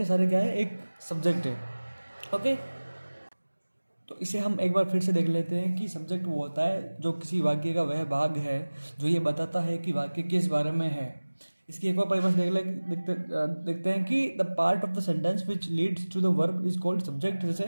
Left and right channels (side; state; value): both; inverted; correlation -1.00